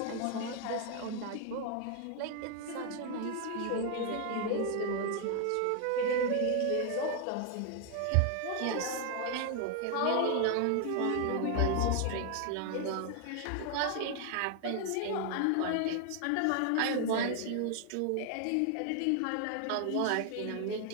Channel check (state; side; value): different; both; correlation 0.00